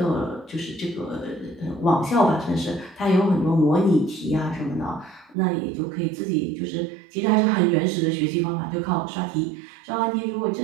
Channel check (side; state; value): left; drops out; at 5.4 s